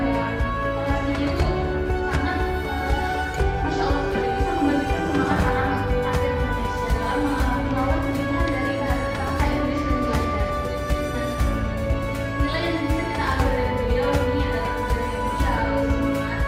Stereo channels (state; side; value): identical; both; correlation 1.00